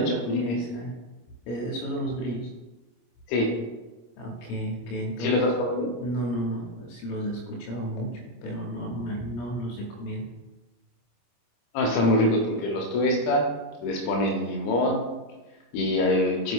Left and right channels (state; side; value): late; right; 26 ms